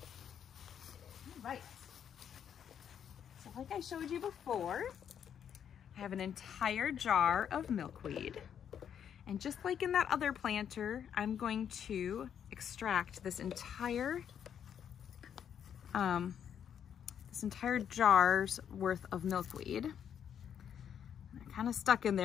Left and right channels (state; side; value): quieter; right; 8.6 dB